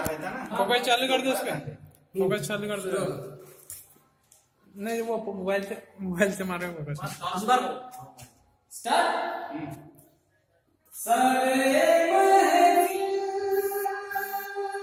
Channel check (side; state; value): both; identical; correlation 1.00